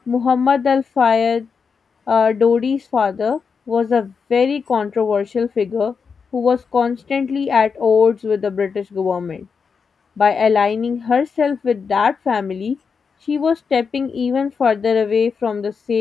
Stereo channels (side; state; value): right; quieter; 5.7 dB